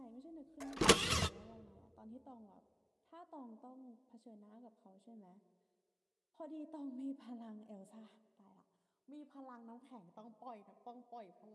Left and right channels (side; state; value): both; identical; correlation 1.00